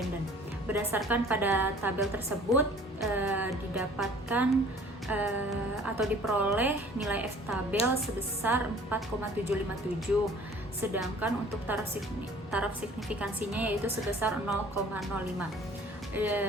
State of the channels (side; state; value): both; normal; correlation 0.51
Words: Berdasarkan pada tabel tersebut didapatkan atau diperoleh nilai F tabel sebesar 4,757, sedangkan untuk taraf signifikansinya yaitu sebesar 0,05.